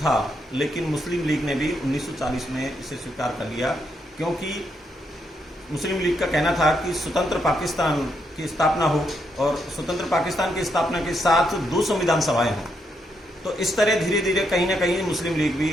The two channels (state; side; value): normal; both; correlation 0.78